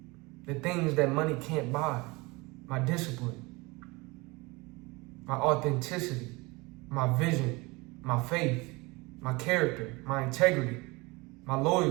The things that money can't buy. My discipline. My authenticity. My vision. My faith. My character. My integrity. My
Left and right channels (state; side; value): quieter; left; 24.6 dB